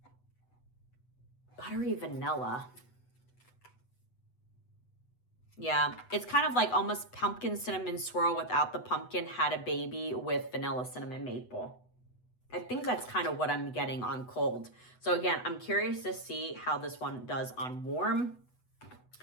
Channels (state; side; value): late; right; 8.1 ms